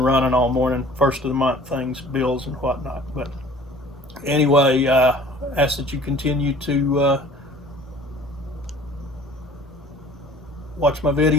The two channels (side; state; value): both; normal; correlation 0.48